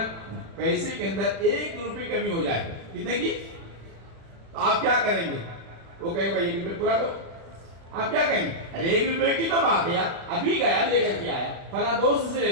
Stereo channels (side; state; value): left; late; 36 ms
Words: پیسے کے اندر 1 روپے کمی ہو جائے, کتنے کی, تو آپ کیا کریں گے؟ وہ کہیں گے بھائی 1 روپے پورا دو. آپ کیا کہیں گے؟ ارے 1 روپے کی تو بات ہے یار, ابھی گیا لے کر کے آیا, فلاں دوست سے لے